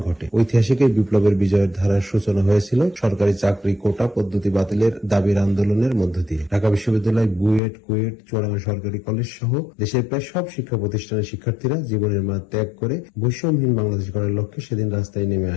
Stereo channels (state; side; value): drops out; right; at 7.6 s